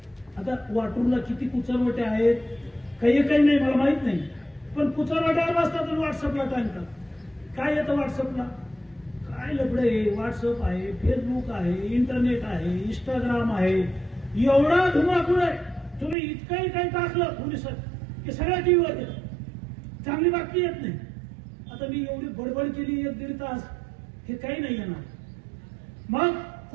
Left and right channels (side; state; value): left; drops out; at 16.2 s